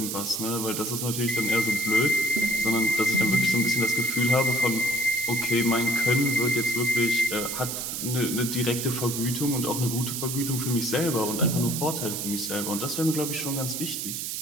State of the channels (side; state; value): right; noise; hiss, 4 dB below the sound